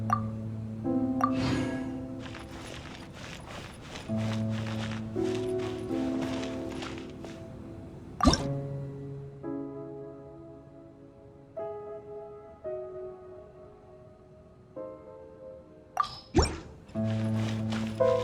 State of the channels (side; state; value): both; identical; correlation 1.00